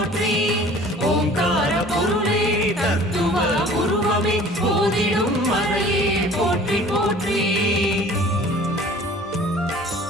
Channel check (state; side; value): normal; both; correlation 0.48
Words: ஓங்கார பொருளே தத்துவ உருவமே போதிடும் மறையே போற்றி போற்றி